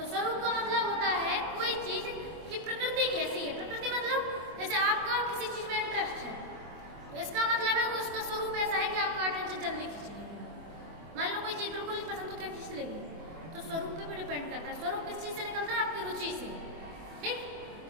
स्वरूप का मतलब होता है कोई चीज की प्रकृति कैसी है। प्रकृति मतलब जैसे आपका किसी चीज में इंटरेस्ट है, तो इसका मतलब है कि उसका स्वरूप ऐसा है कि आपका अटेंशन जल्दी खींच लेगी। मान लो कोई चीज बिल्कुल नहीं पसंद, तो क्या खींच लेगी? तो स्वरूप पे भी डिपेंड करता है। स्वरूप किस चीज से निकलता है? आपकी रुचि से। ठीक।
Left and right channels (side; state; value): left; late; 24 ms